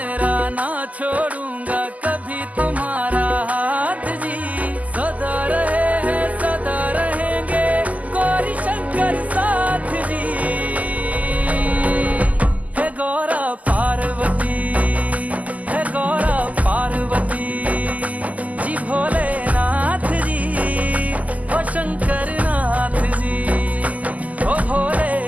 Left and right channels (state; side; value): late; left; 0.075 ms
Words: ना छोड़ूंगा कभी तुम्हारा हाथ जी। सदा रहे हैं सदा रहेंगे गौरी शंकर साथ जी। हे गौरा पार्वती, हे गौरा पार्वती जी, भोलेनाथ जी ओ शंकर नाथ जी, ओ